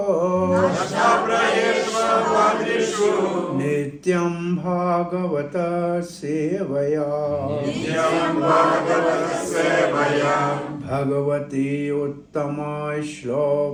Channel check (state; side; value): identical; both; correlation 1.00